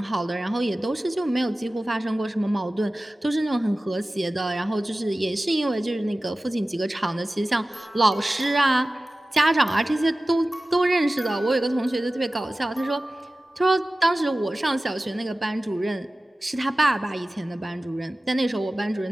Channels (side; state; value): both; normal; correlation 0.96